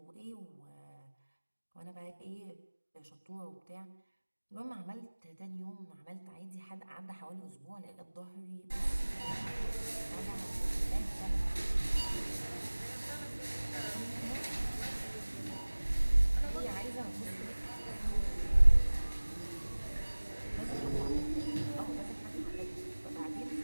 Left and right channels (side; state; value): both; inverted; correlation -1.00